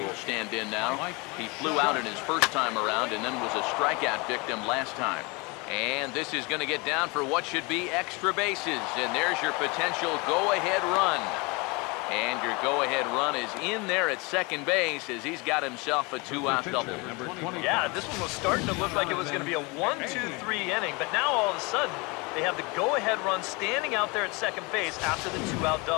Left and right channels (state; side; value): quieter; right; 27.6 dB